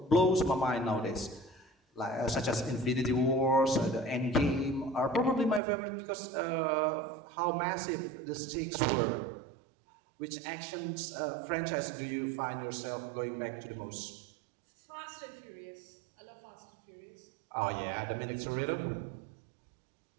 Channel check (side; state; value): left; drops out; at 5.6 s